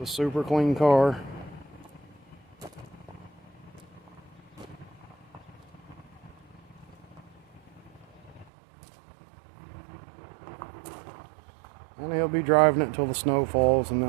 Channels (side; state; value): left; drops out; at 8.5 s